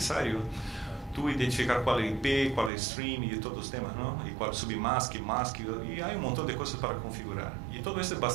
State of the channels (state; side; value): drops out; left; at 2.7 s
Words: tú identificar cuál es IP, cuál es stream y todos los temas, ¿no? Y cuál es submask, mask, y hay un montón de cosas para configurar. Y todo eso es